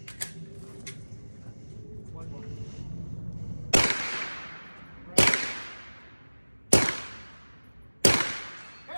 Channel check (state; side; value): inverted; both; correlation -1.00